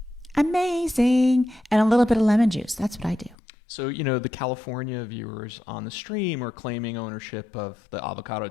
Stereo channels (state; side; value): drops out; right; at 3.4 s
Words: Amazing. And a little bit of lemon juice. That's what I do. So, the California viewers on the stream are claiming ownership of the avocado